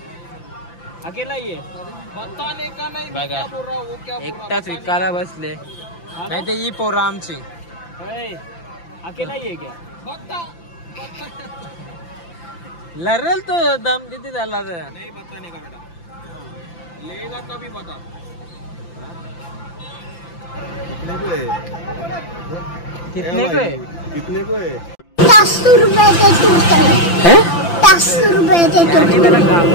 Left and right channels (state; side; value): late; right; 5.9 ms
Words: अकेला ही है. बताने का नहीं. बघा क्या बोल रहा वो, क्या बोल रहा एकटाच विकायला बसले. नाही ते ही पोरं आमची. अकेला ही है क्या? बता लरल तो दम किती झाला तर. नहीं बताने का बेटा, लेगा तभी बता. कितने को है? कितने को है? 10 रुपए के है 10 रुपए